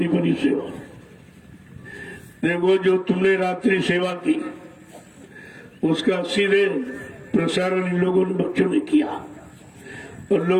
बड़ी सेवा। देखो जो तुमने रात्रि सेवा की, उसका सीधे प्रसारण इन लोगों ने, बच्चों ने किया, और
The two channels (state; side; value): identical; both; correlation 1.00